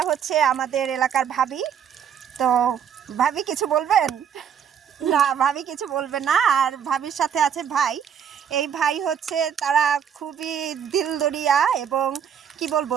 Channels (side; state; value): left; quieter; 8.3 dB